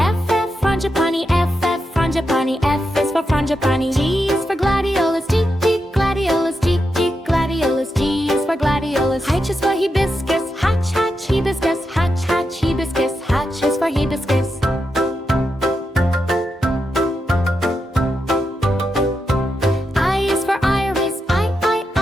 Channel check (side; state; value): both; normal; correlation 0.86